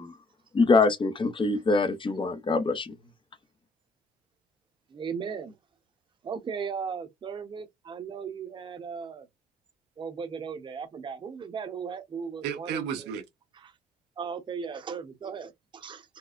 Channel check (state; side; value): normal; both; correlation 0.61